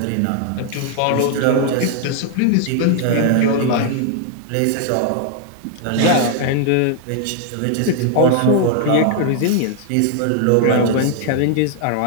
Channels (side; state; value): both; different; correlation 0.00